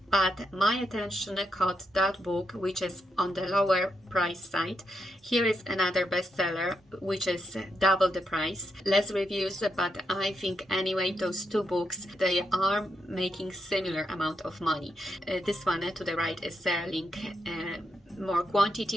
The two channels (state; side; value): normal; both; correlation 0.82